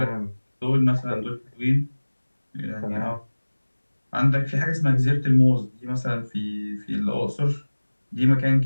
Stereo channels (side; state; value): both; inverted; correlation -1.00